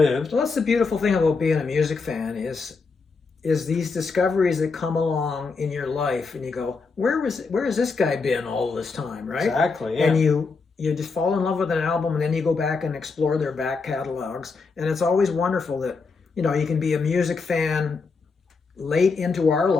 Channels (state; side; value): quieter; right; 4.5 dB